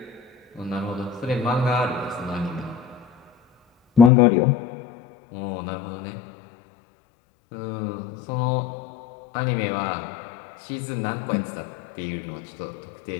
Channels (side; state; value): right; drops out; at 4.1 s